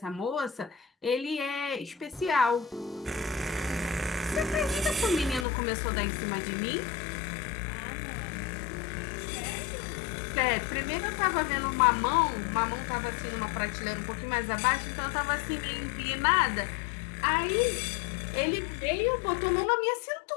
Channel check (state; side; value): drops out; right; at 5.5 s